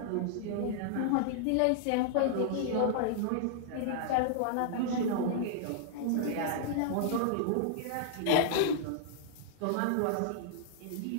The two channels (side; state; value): both; different; correlation -0.01